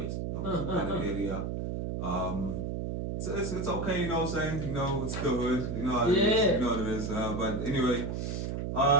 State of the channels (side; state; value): right; noise; hum, 3 dB below the sound